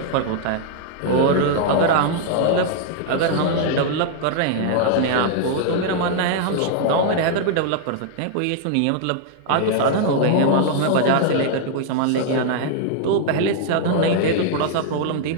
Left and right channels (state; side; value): different; both; correlation 0.00